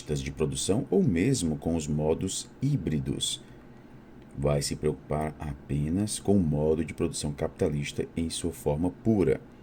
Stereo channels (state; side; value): identical; both; correlation 1.00